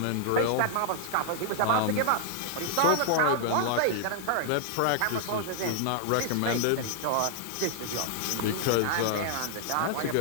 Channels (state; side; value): different; both; correlation -0.01